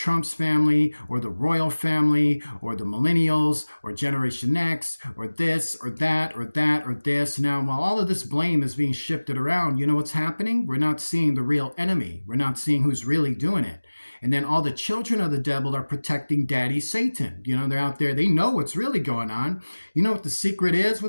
family, or the royal family, or the millennials, or Generation X, or this, or that, or that, or this. Now, while all of this blame is being shifted around, you know what's happening? We're not seeing the real enemy. We're not seeing who's really doing it. And then all the children of the devil are protecting Daddy Satan. You know, they're out there. They know what's really going on. You know what the secret is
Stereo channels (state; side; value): inverted; both; correlation -1.00